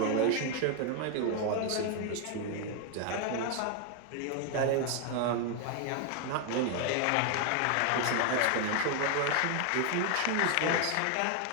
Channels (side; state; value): both; different; correlation 0.01